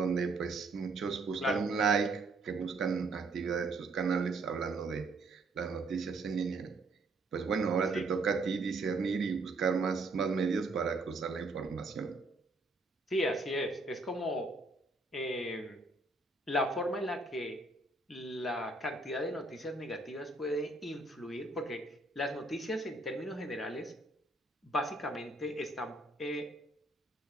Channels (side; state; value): left; quieter; 3.1 dB